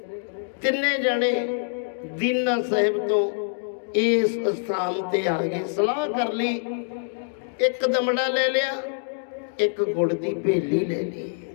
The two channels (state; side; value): silent; right; digital silence